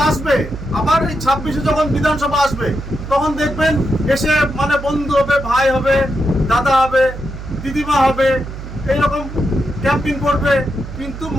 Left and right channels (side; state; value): right; noise; hum, 10 dB below the sound